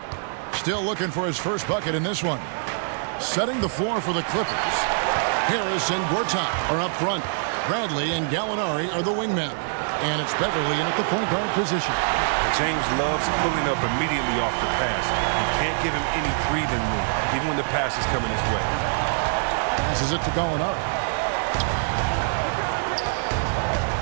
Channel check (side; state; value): left; silent; digital silence